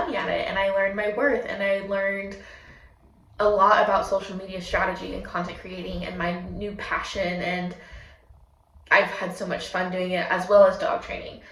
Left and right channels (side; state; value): both; identical; correlation 1.00